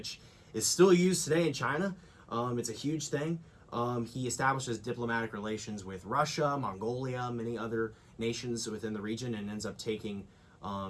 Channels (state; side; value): identical; both; correlation 1.00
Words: is still used today in China. It's a huge thing. He establishes diplomatic relations with Russia, Mongolia, many other nations within the region, and ends up taking